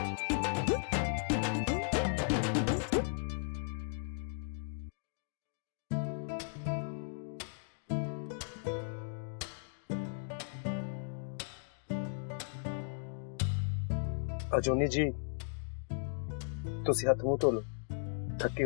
ਅਜੂਨੀ ਜੀ, ਤੁਸੀਂ ਹੱਥ ਮੂੰਹ ਧੋ ਲਓ। ਥੱਕੇ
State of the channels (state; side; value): silent; right; digital silence